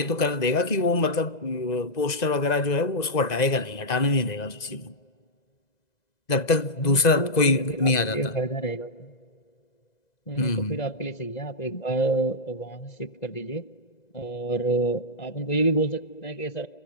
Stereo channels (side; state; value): right; late; 2.0 ms